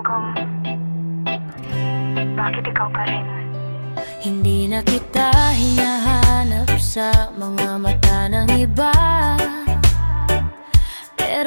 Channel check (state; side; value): inverted; both; correlation -1.00